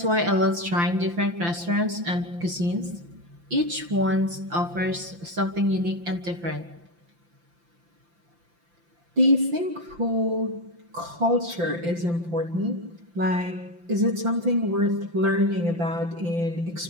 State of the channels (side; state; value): left; late; 5.8 ms